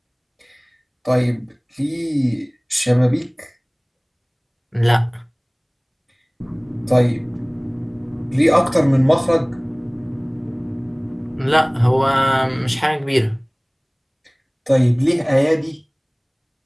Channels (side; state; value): both; identical; correlation 1.00